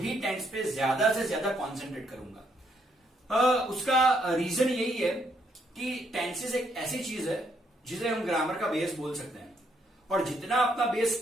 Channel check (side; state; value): both; normal; correlation 0.73